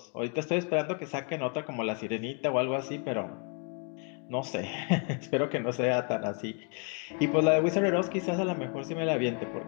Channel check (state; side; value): quieter; right; 39.5 dB